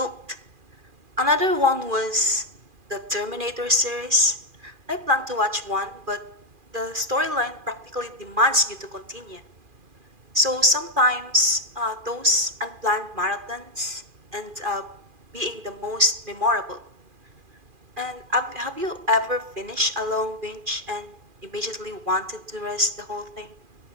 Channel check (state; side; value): late; left; 2.4 ms